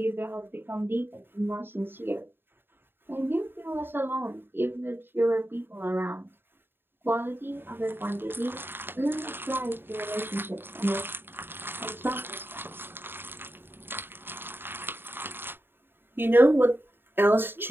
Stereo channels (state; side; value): late; left; 0.10 ms